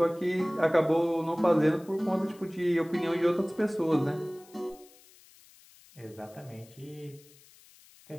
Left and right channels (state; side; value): noise; left; hiss, 26 dB below the sound